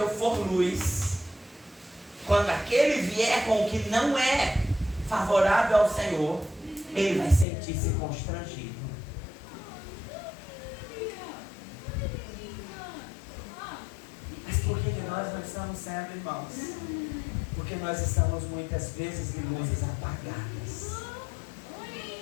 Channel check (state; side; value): drops out; right; at 7.5 s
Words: for luz, quando aquele vier com o que não é favorável ao Senhor, ele vai sentir-se constrangido. nós não estamos sendo, irmãos? Porque nós estamos muitas vezes de luzes apagadas.